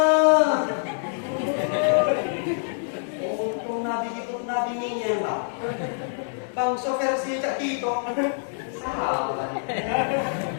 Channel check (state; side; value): silent; right; 61 dB below the other